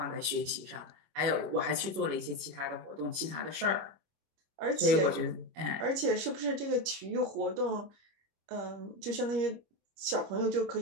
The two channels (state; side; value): late; left; 25 ms